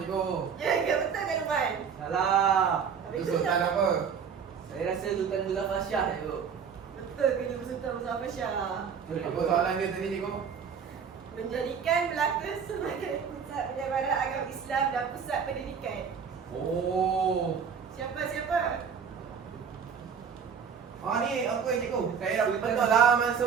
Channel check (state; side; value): quieter; left; 6.8 dB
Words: Ya, betul ke Lukman? Salah. Itu Sultan apa? Saya rasa Sultan Muzaffar Shah cikgu. Betul ke dia bersultan bersama Syah? Apa soalan dia tadi cikgu? Menjadikan Melaka sebagai pusat penyebaran agama Islam dan pusat pendidikan. Oh. Siapa? Ah ni aku yang cikgu. Saya dah betul laman